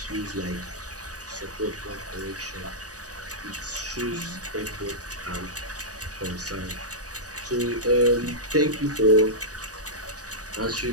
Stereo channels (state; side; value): late; left; 0.67 ms